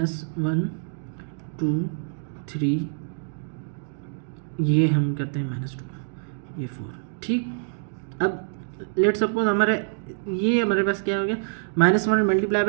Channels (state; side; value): silent; left; digital silence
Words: 2 3, ये हम करते हैं -2, ये 4, ठीक। अब लेट सपोज ये हमारे पास क्या हो गया, -1 मल्टीप्लाई